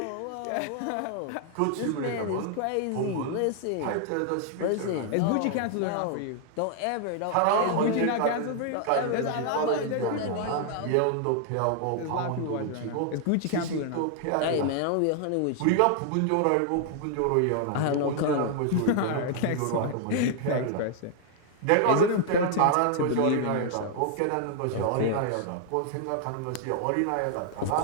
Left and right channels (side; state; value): both; different; correlation 0.00